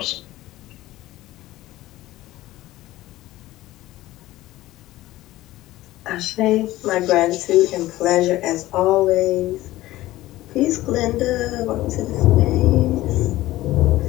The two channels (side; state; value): right; quieter; 16.5 dB